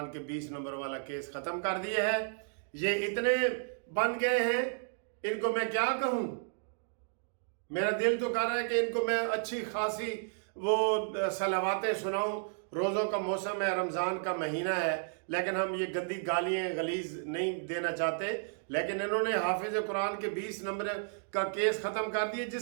کے 20 نمبر والا کیس ختم کر دیا ہے۔ یہ اتنے بن گئے ہیں، ان کو میں کیا کہوں؟ میرا دل تو کر رہا ہے کہ ان کو میں اچھی خاصی وہ صلواتیں سناؤں۔ روزوں کا موسم ہے، رمضان کا مہینہ ہے، لیکن ہم یہ گندی گالیاں غلیظ نہیں دینا چاہتے۔ لیکن انہوں نے حافظ قرآن کے 20 نمبر کا کیس ختم کر دیے،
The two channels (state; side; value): silent; left; digital silence